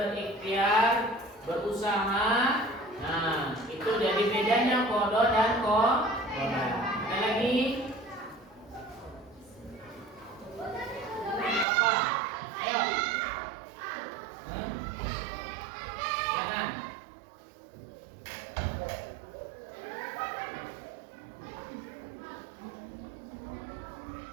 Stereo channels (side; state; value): left; drops out; at 11.7 s